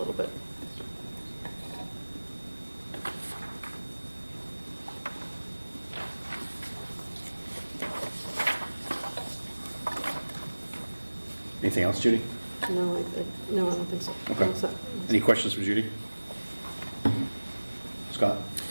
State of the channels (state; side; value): inverted; both; correlation -1.00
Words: bit. Anything else, Judy? No, I don't think so. Okay. All set. Any questions for Judy? Scott?